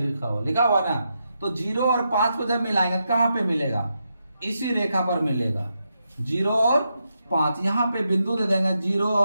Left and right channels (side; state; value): both; inverted; correlation -0.84